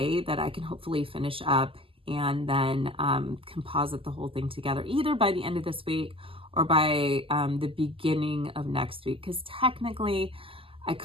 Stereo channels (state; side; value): late; left; 0.26 ms